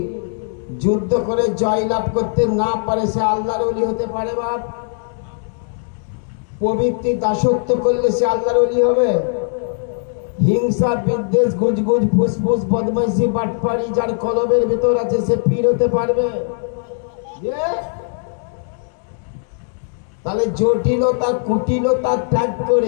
যুদ্ধ করে জয়লাভ করতে না পারে সে আল্লাহর ওলি হতে পারে? বাপ, প্রবৃত্তি দাসত্ব করলে সে আল্লাহর ওলি হবে? হিংসা, বিদ্বেষ, গুজগুজ, ফুসফুস, বদমাইশি, বাটপাড়ি যার কলবের ভিতর আছে সে পীর হতে পারবে? তাহলে জটিলতা, কুটিলতা ত্যাগ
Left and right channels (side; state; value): right; silent; digital silence